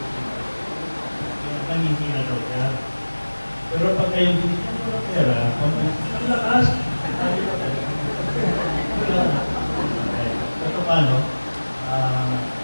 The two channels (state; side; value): inverted; both; correlation -1.00